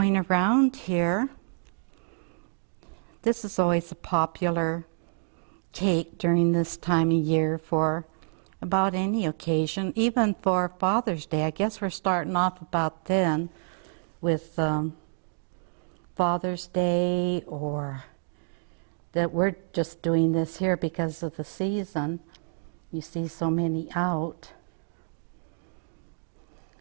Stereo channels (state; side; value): silent; left; digital silence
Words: around here. This is always a popular cake during this time of year for about any occasion, even for Father's Day. I guess we're starting off about then with Father's Day, or that we're just doing this here because of the season. You see so many out.